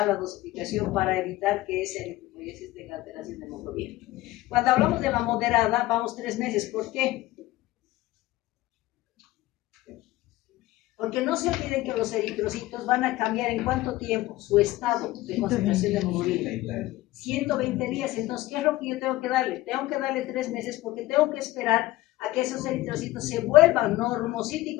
la dosificación para evitar que ese eritropoiesis tenga alteración de hemoglobina. Cuando hablamos de la moderada, vamos 3 meses. ¿Por qué? Porque no se olviden que los eritrocitos van a cambiar en cuánto tiempo su estado de concentración de hemoglobina. 120 días. Entonces, ¿qué es lo que yo tengo que darle? Tengo que darle 3 meses porque tengo que esperar a que esos eritrocitos se vuelvan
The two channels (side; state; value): right; quieter; 17.3 dB